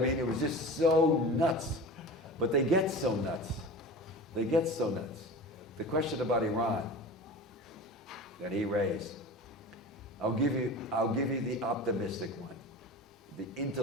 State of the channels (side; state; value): both; normal; correlation 0.33